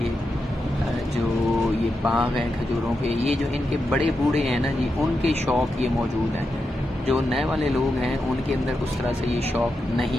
जो ये बाग हैं खजूरों के, ये जो इनके बड़े बूढ़े हैं ना जी, उनके शौक़ ये मौजूद हैं। जो नए वाले लोग हैं उनके अंदर उस तरह से ये शौक़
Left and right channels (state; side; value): normal; both; correlation 0.87